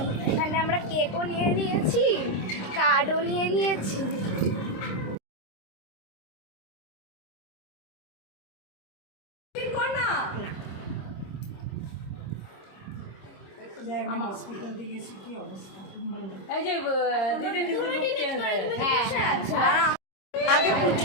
এখানে আমরা কেকও নিয়ে নিয়েছি, কার্ডও নিয়ে নিয়েছি। হসপিটাল থেকে এসে কি অবস্থা এই যে দিদি কিন্তু আগে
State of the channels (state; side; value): late; right; 26 ms